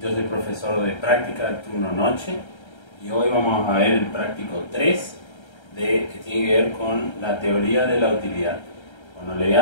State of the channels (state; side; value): late; right; 1.3 ms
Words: yo soy profesor de práctica de turno noche y hoy vamos a ver el práctico 3 que tiene que ver con la teoría de la utilidad. Bueno, le voy